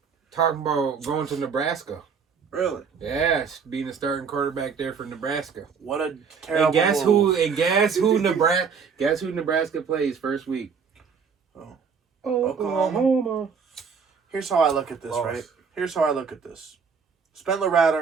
Talking about going to Nebraska. Really? Yeah, being the starting quarterback there for Nebraska. What a terrible move. Guess who Nebraska plays first week? Oklahoma. Here's how I look at this, right? Here's how I look at this. Spencer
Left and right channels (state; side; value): quieter; left; 6.0 dB